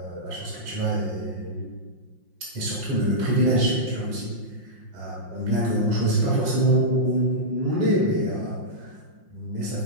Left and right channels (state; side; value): late; left; 5.6 ms